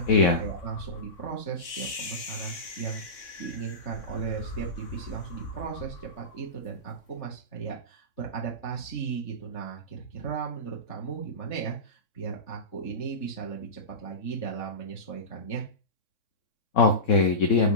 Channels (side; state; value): right; late; 3.6 ms